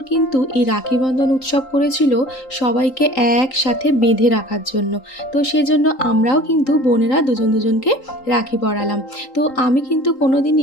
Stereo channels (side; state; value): right; late; 3.8 ms